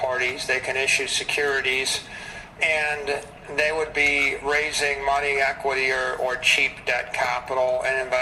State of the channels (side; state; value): both; identical; correlation 1.00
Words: they can issue securities, and they would be raising money, equity, or cheap debt capital and